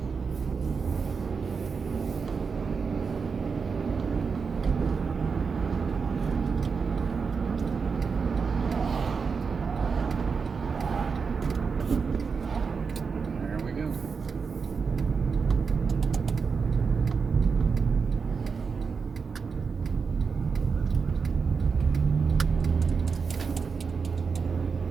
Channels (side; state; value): left; quieter; 5.4 dB